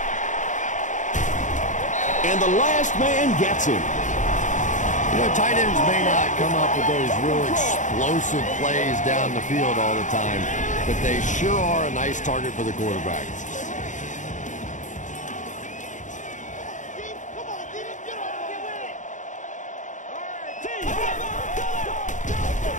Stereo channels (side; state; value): right; late; 0.36 ms